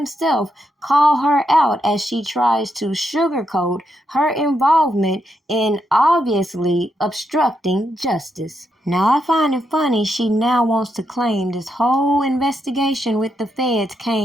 call her out as she tries to sugarcoat her involvement in obviously obstructing justice. Now, I find it funny she now wants to claim this whole investigation with the feds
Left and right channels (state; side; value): normal; both; correlation 0.81